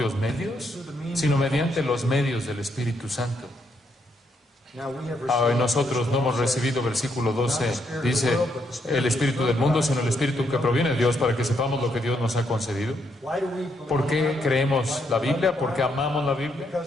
medios, sino mediante los medios del Espíritu Santo. Nosotros no hemos recibido, versículo 12, dice, el espíritu del mundo, sino el espíritu que proviene de Dios, para que sepamos lo que Dios nos ha concedido. ¿Por qué creemos la Biblia? Porque amamos la Biblia,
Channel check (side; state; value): both; normal; correlation 0.76